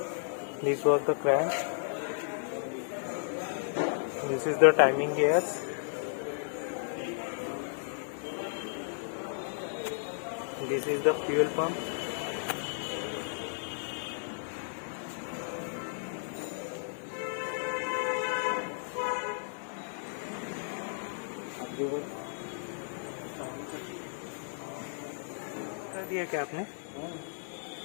This was the crank. This is the timing gears. This is the fuel pump. कर दिया क्या आपने?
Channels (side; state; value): right; silent; digital silence